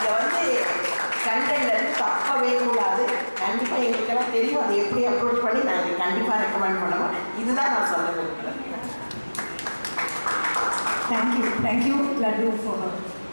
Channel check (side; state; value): both; inverted; correlation -1.00